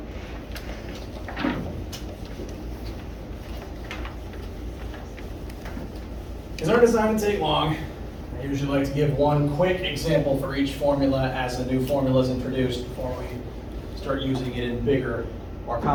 These aren't designed to take long. I usually like to give one quick example for each formula as a new formula is introduced before we start using it in bigger, more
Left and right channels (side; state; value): both; identical; correlation 1.00